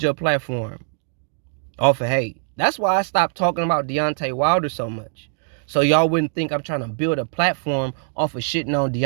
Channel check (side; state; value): left; silent; digital silence